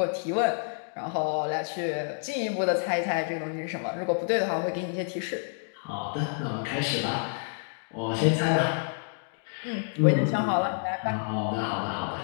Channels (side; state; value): right; silent; digital silence